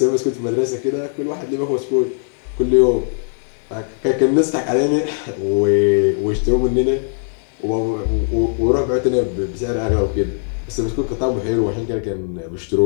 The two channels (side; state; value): right; silent; digital silence